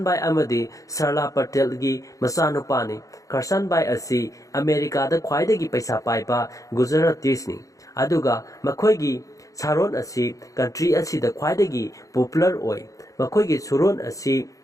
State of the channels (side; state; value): right; late; 0.16 ms